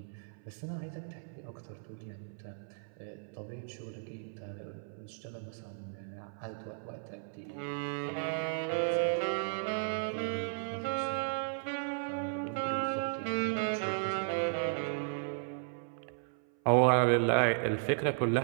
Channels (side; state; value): left; silent; 54 dB below the other